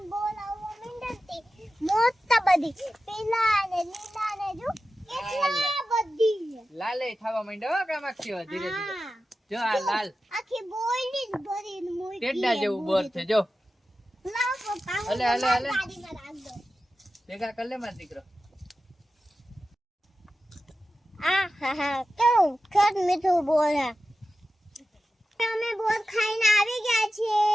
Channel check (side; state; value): both; normal; correlation 0.93